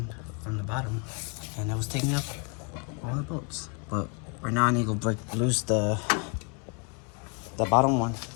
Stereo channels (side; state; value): right; quieter; 34.4 dB